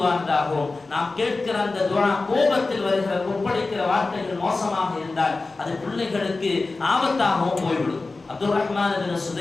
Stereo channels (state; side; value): quieter; right; 3.6 dB